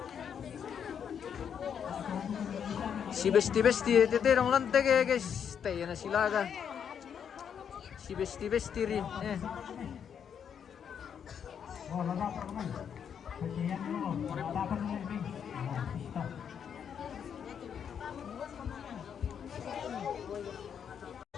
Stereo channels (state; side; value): quieter; right; 7.9 dB